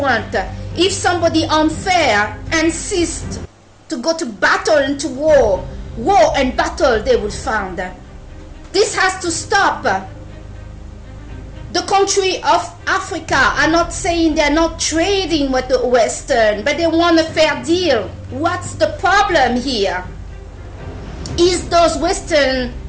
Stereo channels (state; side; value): identical; both; correlation 1.00